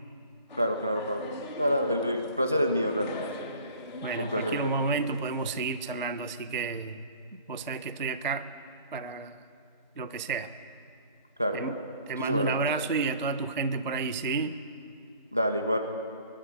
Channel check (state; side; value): inverted; both; correlation -0.49